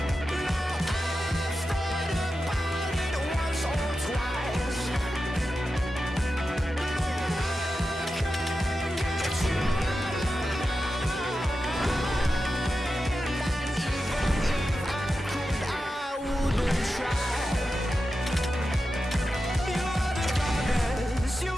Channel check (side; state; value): both; normal; correlation 0.91